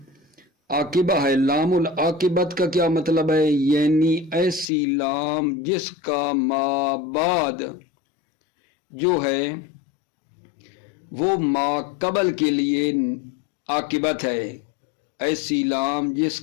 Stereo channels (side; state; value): right; drops out; at 4.7 s